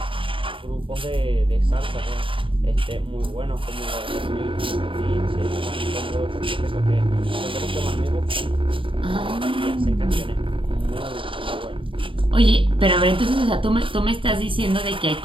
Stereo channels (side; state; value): left; late; 0.25 ms